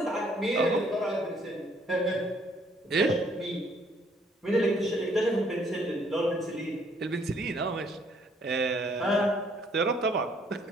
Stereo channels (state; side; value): normal; both; correlation 0.65